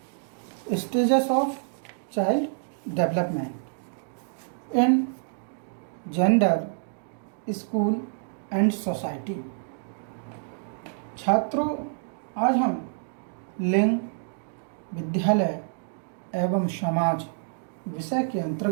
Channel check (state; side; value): silent; left; digital silence